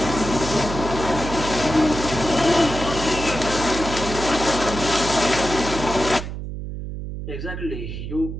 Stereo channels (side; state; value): right; noise; hum, 7 dB below the sound